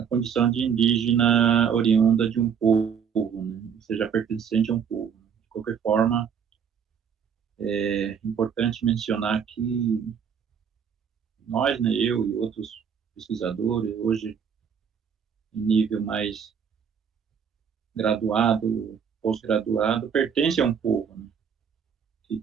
condição de indígena oriunda de um povo, né? Ou seja, pertencente a um povo. De qualquer forma, é importante mencionar que nós, né, eu e outros pesquisadores, hoje em nível mais graduado, pós-graduado, pertence a um povo, né,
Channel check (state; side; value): quieter; left; 7.4 dB